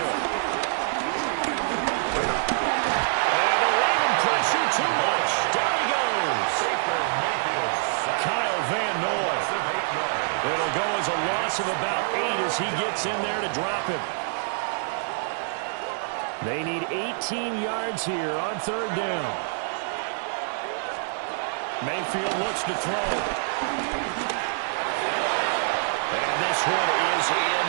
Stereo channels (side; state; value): left; silent; digital silence